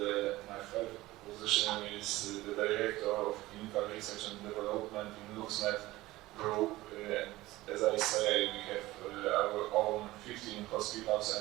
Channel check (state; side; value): quieter; left; 18.1 dB